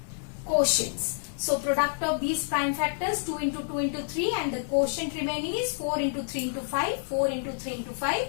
quotients. So product of these prime factors 2 into 2 into 3 and the quotient remaining is 4 into 3 into 5, 4 into 3 into 5.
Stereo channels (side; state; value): right; silent; digital silence